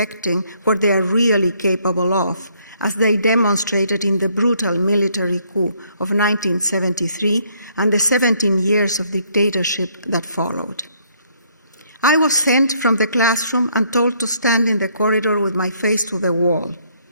what they are really capable of, as they demonstrated in the brutal military coup of 1973 and the 17 years of dictatorship that followed. I was sent from the classroom and told to stand in the corridor with my face to the wall,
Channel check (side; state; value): both; inverted; correlation -0.68